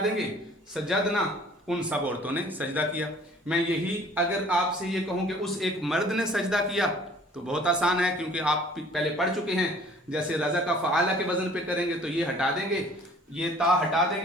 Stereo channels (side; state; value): both; normal; correlation 0.53